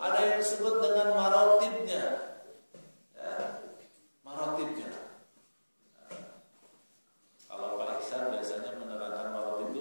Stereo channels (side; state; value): both; inverted; correlation -1.00